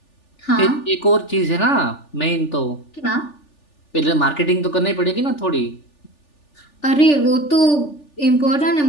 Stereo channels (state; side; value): late; right; 3.4 ms